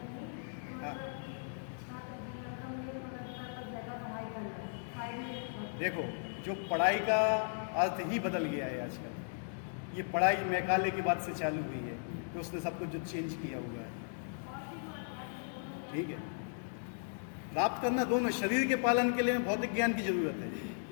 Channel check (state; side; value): silent; right; digital silence